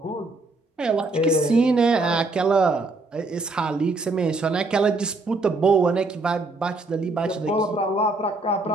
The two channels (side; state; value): left; quieter; 3.2 dB